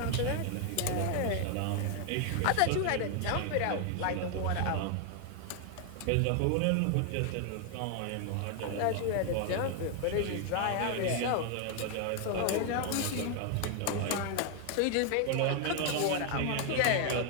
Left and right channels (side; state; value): both; different; correlation 0.00